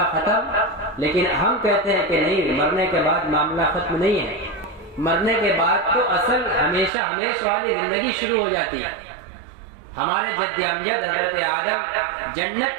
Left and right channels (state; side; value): drops out; left; at 6.9 s